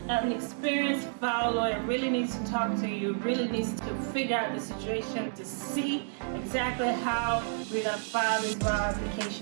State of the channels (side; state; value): left; silent; digital silence